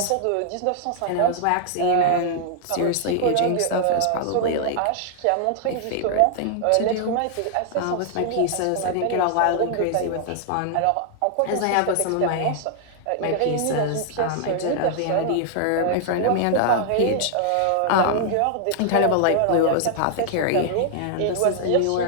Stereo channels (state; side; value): different; both; correlation -0.01